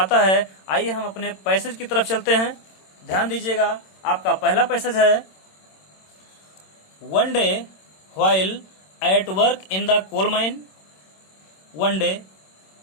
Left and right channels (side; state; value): right; late; 26 ms